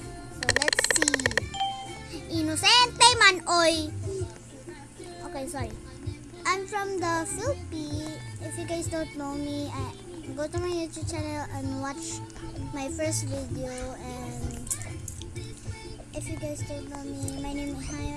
So let's see. Inosente man, oy! Okay, sorry. I'm from the Philippines. If you guys don't know me, go to my YouTube channel and watch my first video. And if you guys don't know me, my name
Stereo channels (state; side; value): identical; both; correlation 1.00